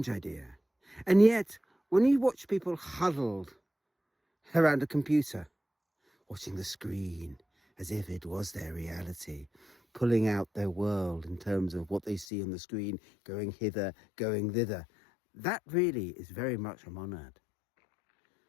idea. And yet, when you watch people huddled around a computer, watching the screen as if it was their reality, pulling out their world in terms of what they see on the screen, going hither, going thither. That really is very much a monad.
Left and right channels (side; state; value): right; drops out; at 12.2 s